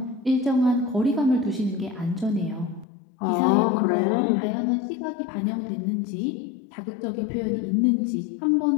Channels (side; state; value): right; drops out; at 2.9 s